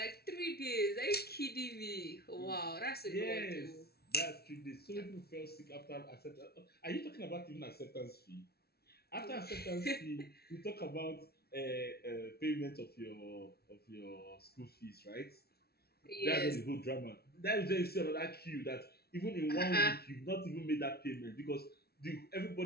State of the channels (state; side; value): late; right; 0.45 ms